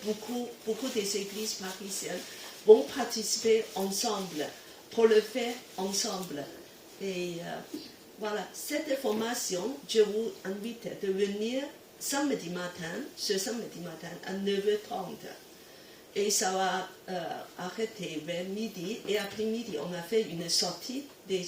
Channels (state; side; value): identical; both; correlation 1.00